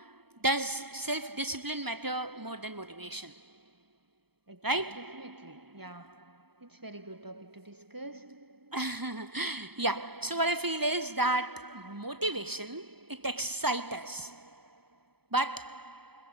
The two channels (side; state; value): left; late; 0.97 ms